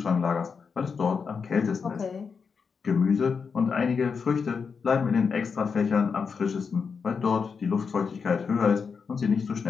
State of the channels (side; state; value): right; quieter; 5.7 dB